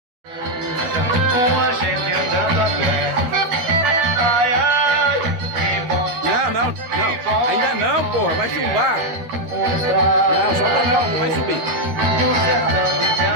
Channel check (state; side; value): late; left; 13 ms